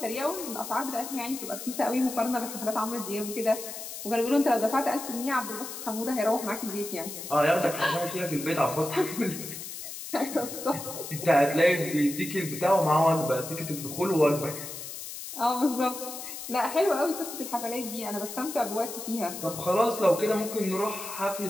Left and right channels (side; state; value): left; noise; hiss, 9 dB below the sound